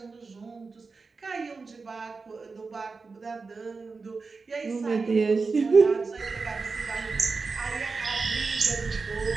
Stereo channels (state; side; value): quieter; left; 4.3 dB